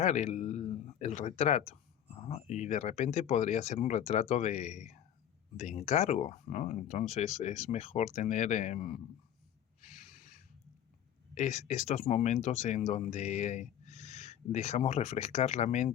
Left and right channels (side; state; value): right; quieter; 10.2 dB